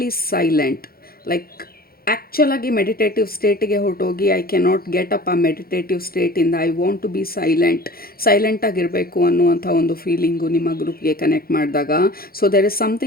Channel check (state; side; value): late; right; 0.44 ms